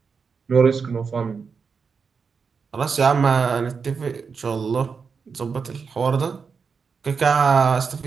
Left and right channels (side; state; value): left; quieter; 5.5 dB